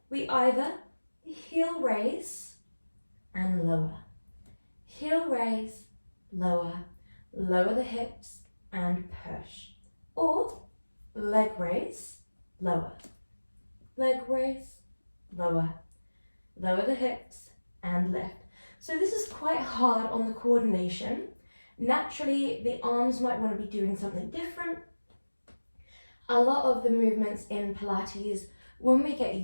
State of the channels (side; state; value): both; inverted; correlation -1.00